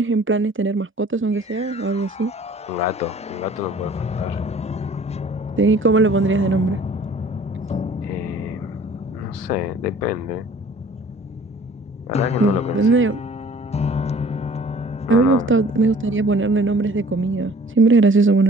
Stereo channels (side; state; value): both; normal; correlation 0.51